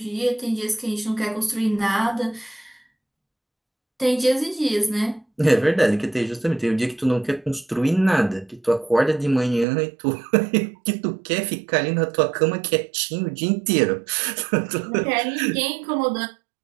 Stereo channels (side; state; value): left; drops out; at 9.7 s